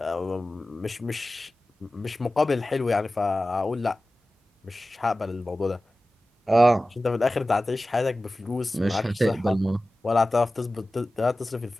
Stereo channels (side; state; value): both; normal; correlation 0.95